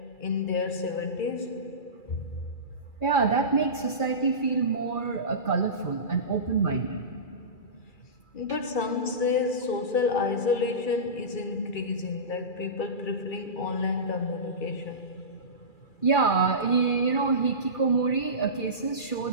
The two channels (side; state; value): right; late; 2.3 ms